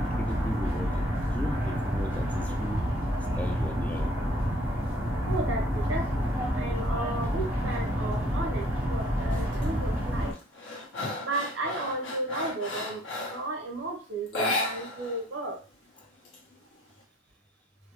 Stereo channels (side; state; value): both; normal; correlation 0.61